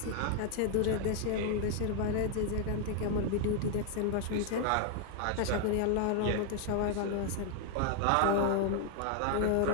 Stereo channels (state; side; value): different; both; correlation 0.00